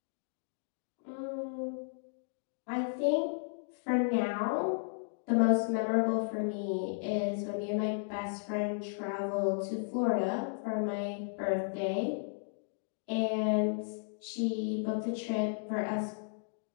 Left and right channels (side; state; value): right; silent; digital silence